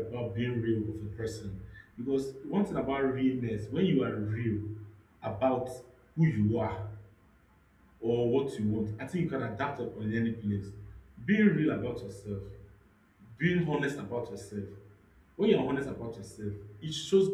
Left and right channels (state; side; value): identical; both; correlation 1.00